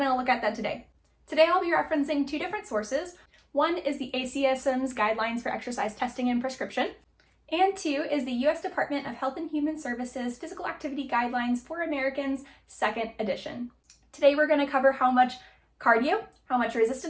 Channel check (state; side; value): identical; both; correlation 1.00